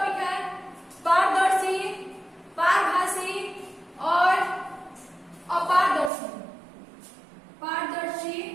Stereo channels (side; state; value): left; drops out; at 6.1 s